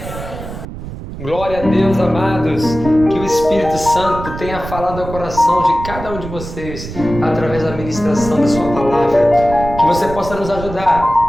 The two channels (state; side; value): noise; right; rumble, 10 dB below the sound